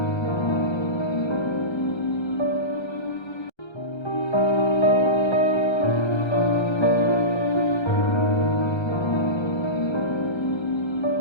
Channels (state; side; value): late; right; 1.3 ms